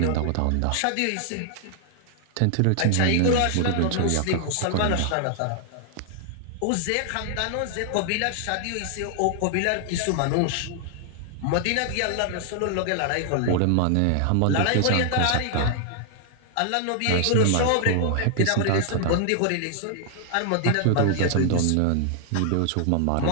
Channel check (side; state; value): both; different; correlation 0.00